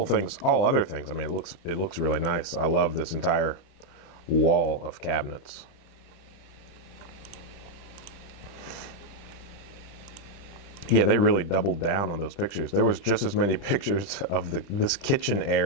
other things, I mean, it looks really nice. I love this entire wall of cabinets. Yeah, they really doubled down on those pictures. There was just as many pictures of this kitchen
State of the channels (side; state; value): right; late; 30 ms